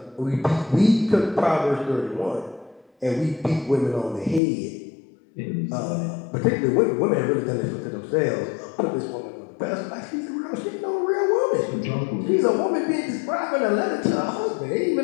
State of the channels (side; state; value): right; drops out; at 4.4 s